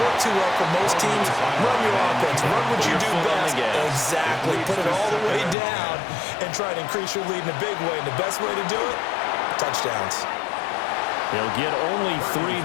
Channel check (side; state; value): right; drops out; at 5.6 s